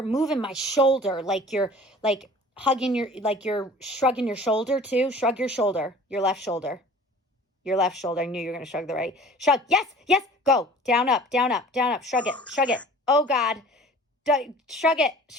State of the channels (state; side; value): normal; both; correlation 0.46